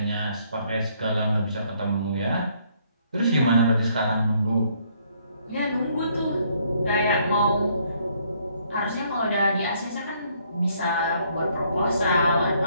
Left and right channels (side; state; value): both; inverted; correlation -0.67